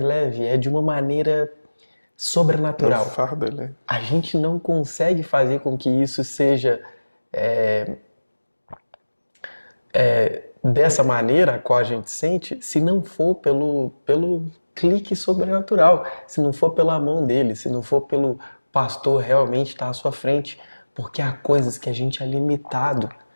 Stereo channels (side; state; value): both; inverted; correlation -1.00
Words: leve, é de uma maneira sobrenatural. Fardo, né? A gente não consegue fazer com que isso seja dessa maneira a qual a gente sente, se não for pelo clique sobrenatural, se não for pela mão dele, se não for pelo pastor realmente estar à sua frente, porque há coisas que a gente é limitado,